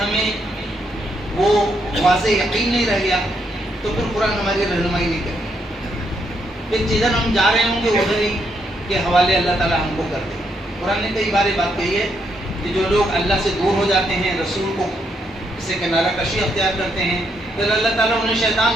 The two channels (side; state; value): both; normal; correlation 0.76